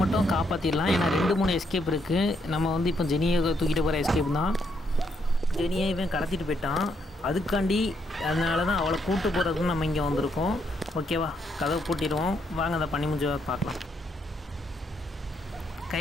மட்டும் காப்பாற்றிடலாம். ஏன்னா 2-3 எஸ்கேப் இருக்குது. நம்ம வந்து இப்போ ஜெனியை தூக்கிட்டு போகிற எஸ்கேப் தான். ஜெனியை இவன் கடத்திட்டு போயிட்டான். அதுக்காண்டி அதனால தான் அவளை கூட்டு போகிறதுக்கு நம்ம இங்கே வந்திருக்கோம். ஓகேவா, கதவை பூட்டிடுவோம். வாங்க அதை பண்ணி முடிஞ்ச பார்க்கலாம்.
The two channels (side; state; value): both; normal; correlation 0.75